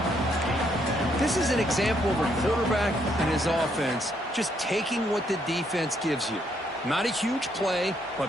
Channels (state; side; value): normal; both; correlation 0.73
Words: This is an example of a quarterback and his offense just taking what the defense gives you. Not a huge play, but